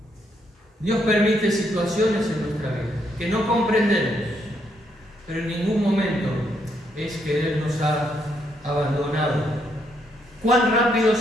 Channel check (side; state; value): both; normal; correlation 0.75